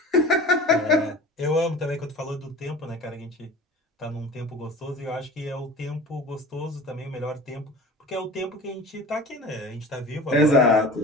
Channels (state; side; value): normal; both; correlation 0.39